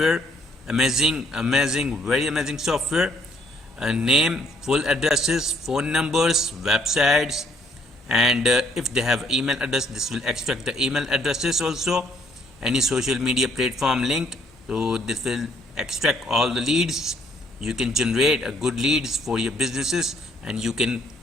Amazing, very amazing software. Name, full addresses, phone numbers, websites, and if they have email address, this will extract the email addresses also. Any social media platform linked, so this will extract all the leads. You can generate a good leads for your businesses, and you can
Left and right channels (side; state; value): both; normal; correlation 0.66